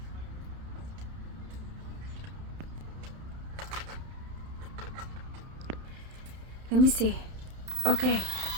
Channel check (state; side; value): late; left; 31 ms